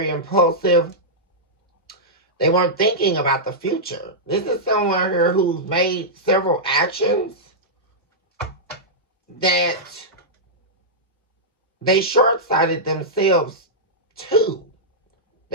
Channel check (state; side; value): normal; both; correlation -0.11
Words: impulsive. They weren't thinking about the future. This is someone here who's made several actions that they short-sighted themselves too.